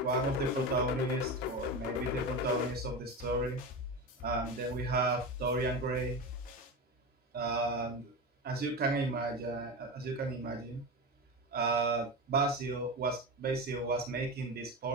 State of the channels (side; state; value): both; normal; correlation 0.22